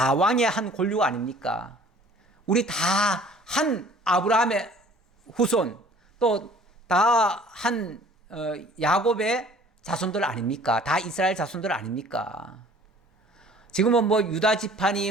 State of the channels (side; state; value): both; normal; correlation 0.52